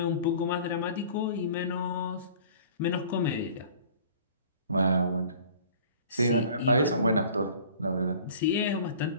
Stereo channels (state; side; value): inverted; both; correlation -0.47